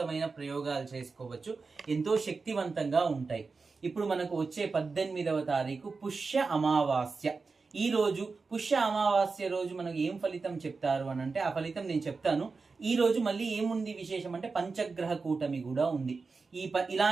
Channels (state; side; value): quieter; left; 4.4 dB